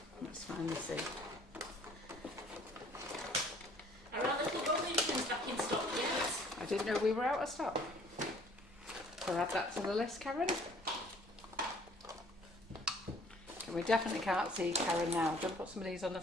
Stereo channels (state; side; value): normal; both; correlation 0.56